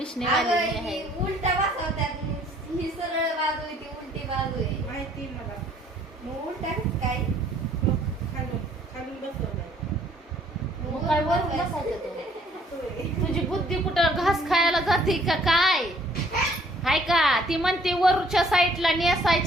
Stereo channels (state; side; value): normal; both; correlation 0.61